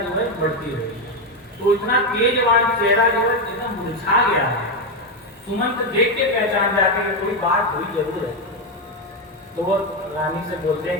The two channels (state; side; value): normal; both; correlation 0.08